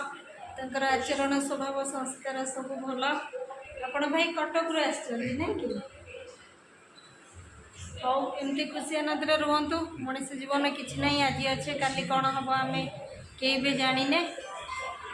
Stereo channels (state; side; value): identical; both; correlation 1.00